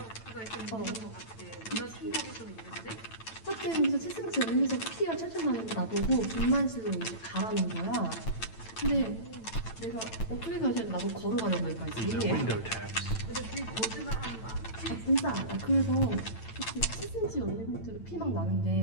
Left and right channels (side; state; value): right; late; 9.0 ms